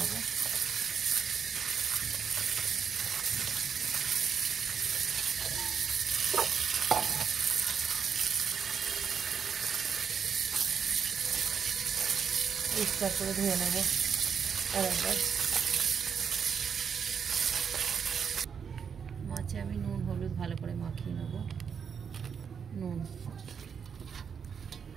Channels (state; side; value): quieter; left; 6.8 dB